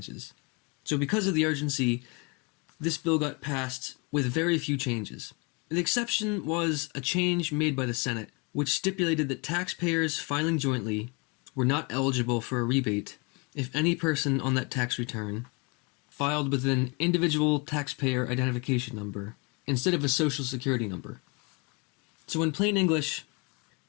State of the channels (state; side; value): quieter; right; 30.8 dB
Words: So because of the urgency, this bill got passed with very few changes. The exception was a change made by the Senate, which stipulated that taxpayers filing jointly were not eligible for a rebate if any person on that tax return filed with an individual taxpayer identification number instead of a social security number. So in plain English,